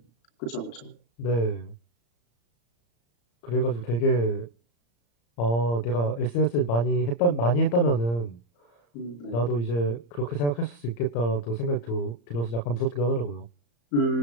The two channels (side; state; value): right; late; 34 ms